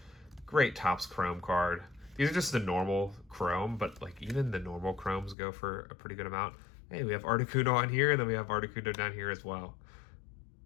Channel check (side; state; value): right; drops out; at 5.4 s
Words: great Topps Chrome card. These are just the normal Chrome, but like even the normal Chromes go for a pretty good amount. Hey, we have Articuno on here, and then we have Articuno down here as well.